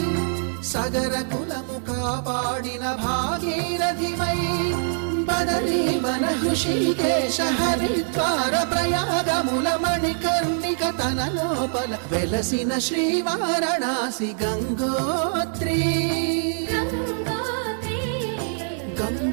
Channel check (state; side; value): silent; left; 63 dB below the other